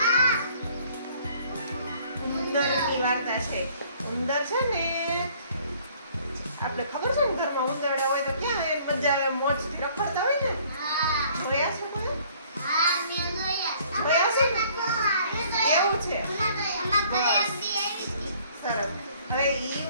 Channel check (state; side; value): inverted; both; correlation -0.58